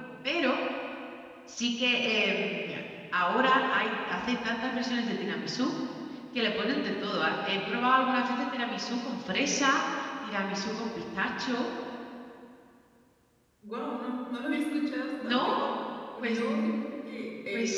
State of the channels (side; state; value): both; identical; correlation 1.00